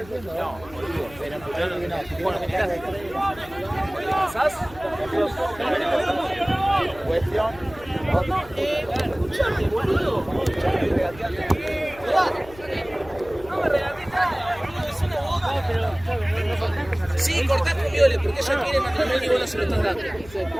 no, pero bueno, me enteraste. ¿Pasás? Cuestión. Escuchame, boludo. No me regatees nada, boludo, es una boca. Sí, cortá con Viole, porque ella quiere matrimonio y vos no se lo estás dando.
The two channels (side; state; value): left; noise; hum, 19 dB below the sound